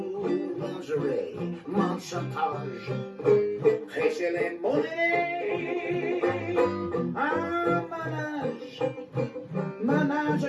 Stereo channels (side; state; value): both; identical; correlation 1.00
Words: Lingerie, mon chantage, prêcher les monnaies, manage